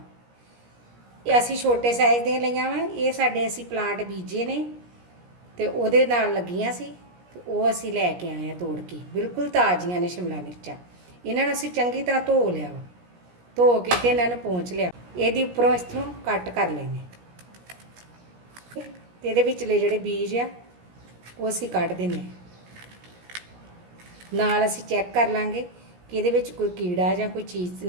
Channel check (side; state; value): left; late; 17 ms